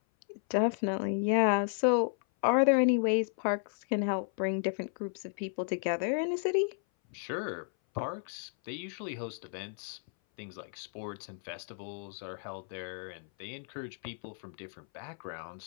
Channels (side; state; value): right; silent; 56 dB below the other